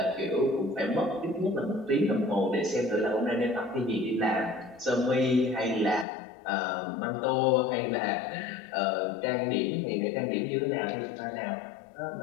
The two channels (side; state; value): right; drops out; at 6.1 s